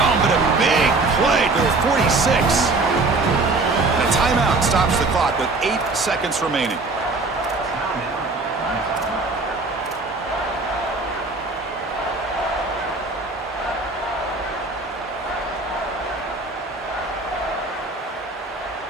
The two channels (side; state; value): left; quieter; 3.5 dB